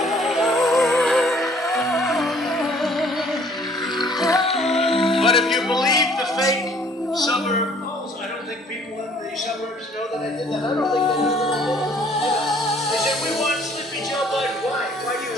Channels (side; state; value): both; normal; correlation 0.57